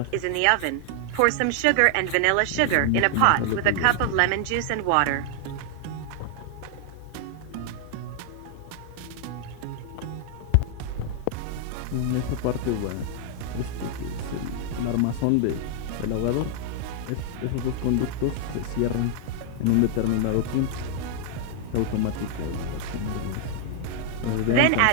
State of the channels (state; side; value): different; both; correlation 0.00